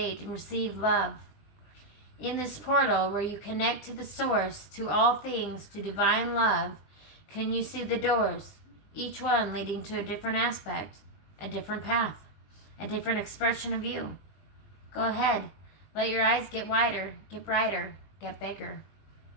and receive love. In this portal where you connect to the source, to all things, to divine love, can you see the doors, each one leading to a different aspect, a different path, a different expression of you? Go ahead. Let your eyes get wider, get brighter, get bigger.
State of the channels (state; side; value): late; right; 20 ms